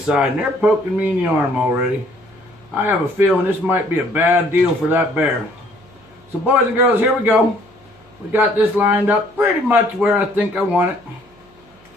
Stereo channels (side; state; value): right; noise; hum, 29 dB below the sound